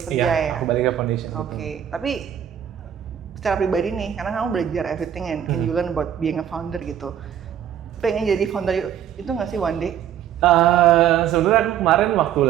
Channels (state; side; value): quieter; left; 9.8 dB